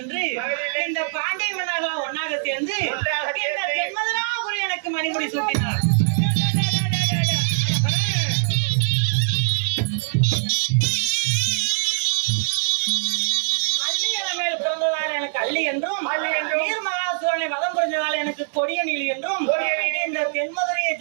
என்று இந்த பாண்டிய மன்னர்கள் ஒன்னாக சேர்ந்து இந்த தென்மதுராபுரி எனக்கு மணிமுடி சூட்டினார். எனக்கு அள்ளி என்றும் நீர்மகாசூரனை வதம் புரிஞ்சதால் எனக்கு கொடிய நீலி என்றும் இந்த தென்மதுரைய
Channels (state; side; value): silent; left; digital silence